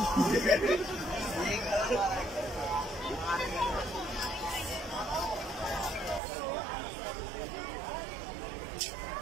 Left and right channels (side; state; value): left; drops out; at 6.2 s